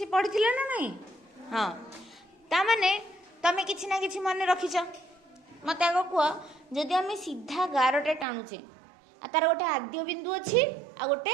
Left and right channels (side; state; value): left; drops out; at 8.2 s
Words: पढ़िथिले ना नहीं। हां ता माने तमे किछि ना किछि मन रखिछ मते आगो कुआ जदि आमे सीधा गारटे टाणुचे आ तार गोटे आद्य बिंदु अछि आ